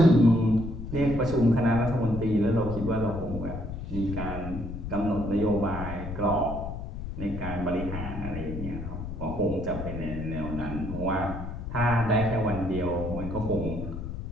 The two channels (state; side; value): noise; left; rumble, 7 dB below the sound